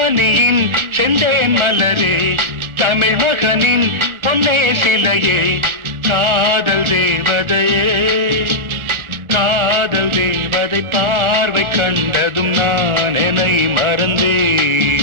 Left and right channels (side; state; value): left; late; 1.4 ms